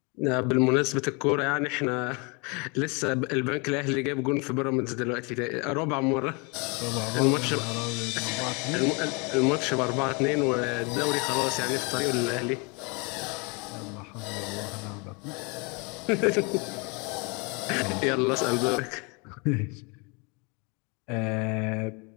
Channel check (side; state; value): right; quieter; 31.1 dB